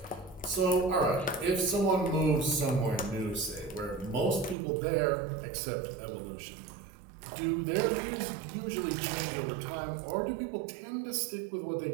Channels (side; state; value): left; drops out; at 4.5 s